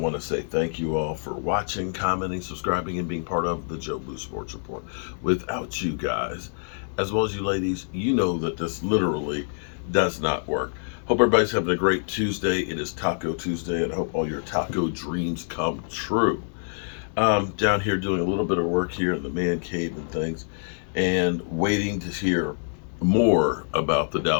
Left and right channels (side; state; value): right; silent; 60 dB below the other